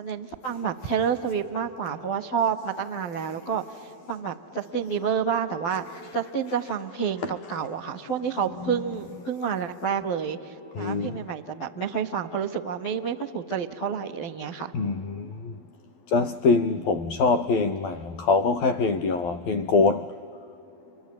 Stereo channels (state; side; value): late; right; 12 ms